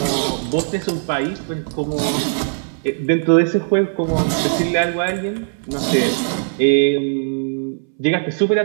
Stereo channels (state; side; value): silent; left; 66 dB below the other